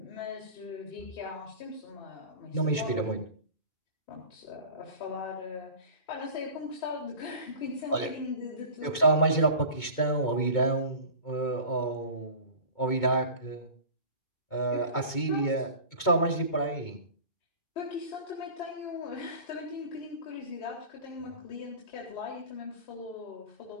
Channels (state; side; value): late; right; 2.2 ms